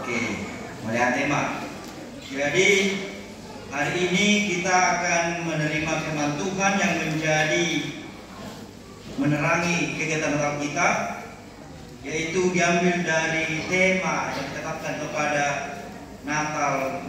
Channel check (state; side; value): identical; both; correlation 1.00